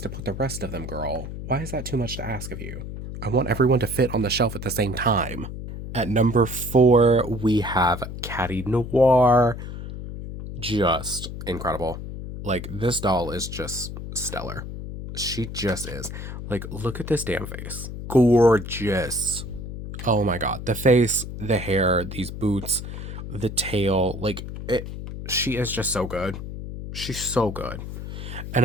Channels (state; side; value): noise; left; hum, 8 dB below the sound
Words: to put the rest of them, girl. Why is that too much to ask of you? I want everyone to fit on the shelf at the same time. At number 4, we have Catty Noir. Just incredible. Like, this doll is just stellar. She just is. Like, look at this damn face. Gorgeous. Oh my god. The face, the hair, these boots, the tail. Like, she is just so good. She's so good. And